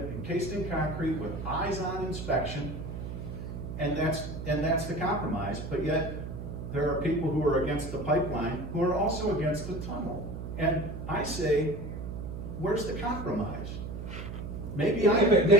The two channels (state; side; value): noise; right; hum, 7 dB below the sound